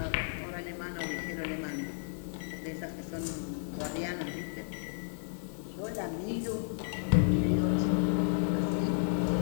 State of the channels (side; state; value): right; silent; 56 dB below the other